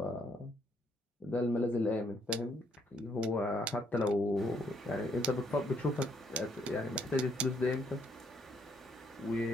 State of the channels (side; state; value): both; normal; correlation 0.70